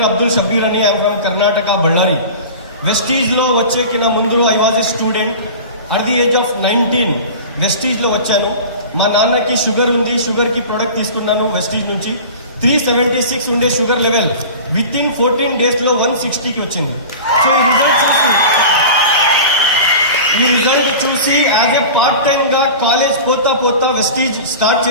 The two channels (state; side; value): inverted; both; correlation -0.35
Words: అబ్దుల్ షబీర్ అని, I'm from Karnataka, Ballari. Vestige లో వచ్చే కింద ముందు I was a student at the age of 19. Vestige లో వచ్చాను. మా నాన్నకి షుగర్ ఉంది, షుగర్ కి ప్రొడక్ట్ తీసుకున్నాను వెస్టీజ్ నుంచి. 376 ఉండే sugar level within 14 days లో 160కి వచ్చింది. సో ఈ రిజల్ట్ చూసి యాజ్ ఎ పార్ట్ టైమ్ గా కాలేజ్ పోతా వెస్టీజ్ స్టార్ట్